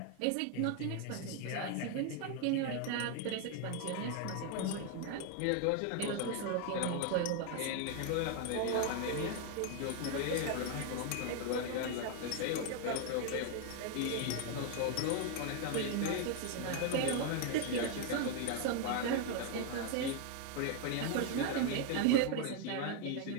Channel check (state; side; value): different; both; correlation 0.00